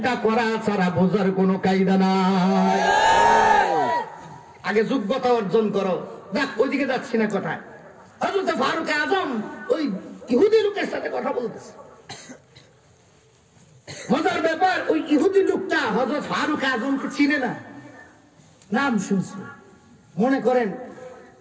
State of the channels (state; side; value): identical; both; correlation 1.00